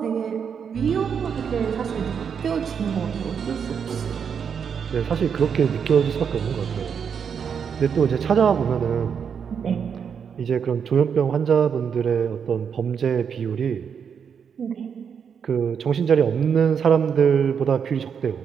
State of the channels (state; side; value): quieter; left; 7.1 dB